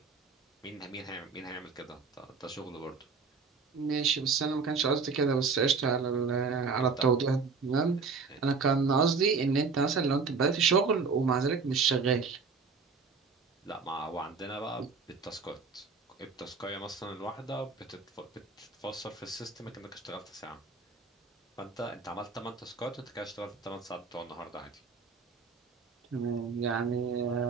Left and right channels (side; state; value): left; quieter; 4.9 dB